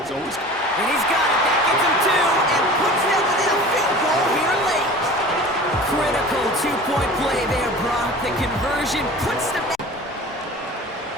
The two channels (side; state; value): both; normal; correlation 0.40